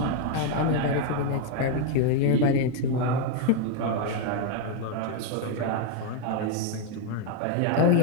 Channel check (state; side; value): different; both; correlation 0.01